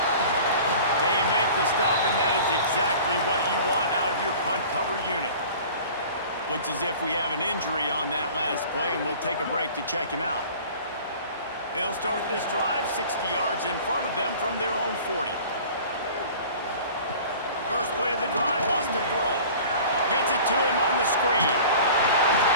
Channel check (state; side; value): inverted; both; correlation -0.44